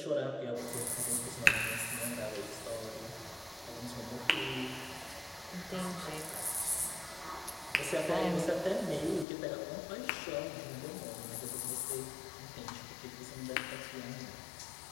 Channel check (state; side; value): drops out; right; at 9.2 s